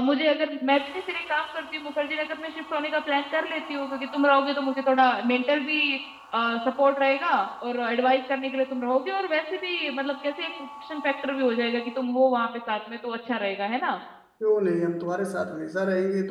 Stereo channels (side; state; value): both; identical; correlation 1.00